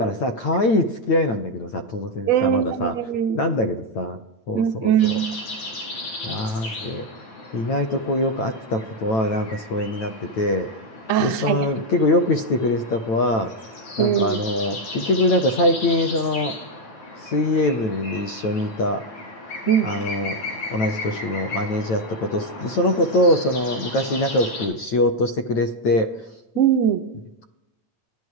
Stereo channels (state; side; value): late; right; 9.1 ms